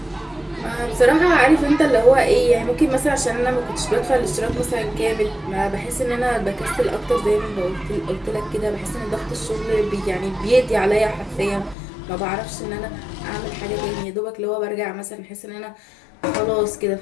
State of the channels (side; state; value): right; drops out; at 11.8 s